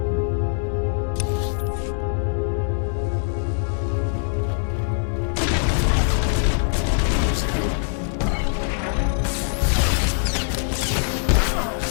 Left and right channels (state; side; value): silent; right; digital silence